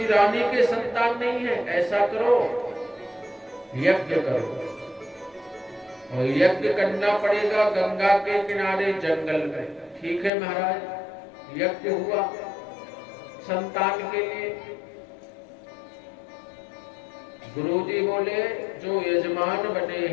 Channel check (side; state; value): right; drops out; at 10.3 s